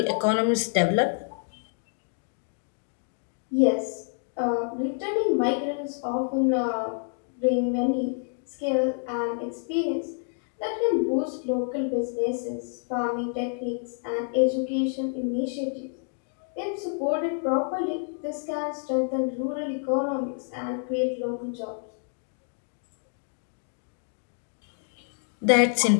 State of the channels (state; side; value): silent; right; 59 dB below the other